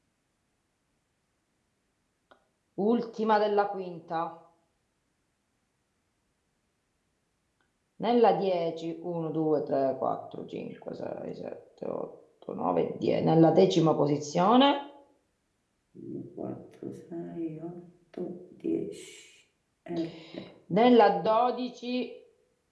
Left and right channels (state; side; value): identical; both; correlation 1.00